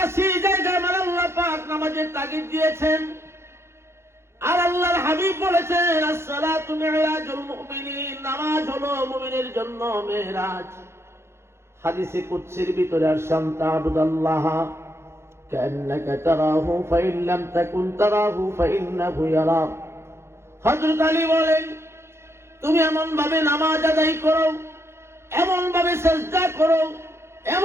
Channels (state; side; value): late; left; 0.13 ms